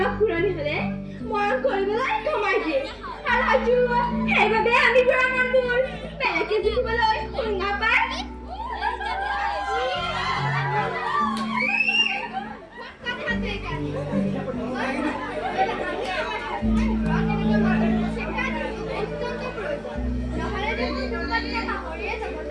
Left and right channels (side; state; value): both; identical; correlation 1.00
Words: ঘূৰণি হলে মৰম কৰিবলৈ কমাই দিয়ে আৰু হয়তো সেইবাবে আমি বুঢ়া মানুহবোৰ বেলেগে জিকিবলৈ শুঙা পায়